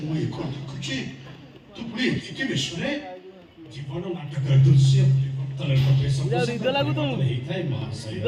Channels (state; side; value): identical; both; correlation 1.00